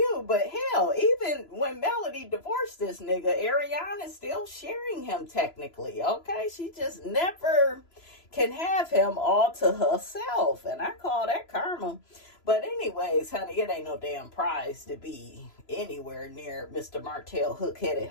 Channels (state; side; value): late; right; 3.0 ms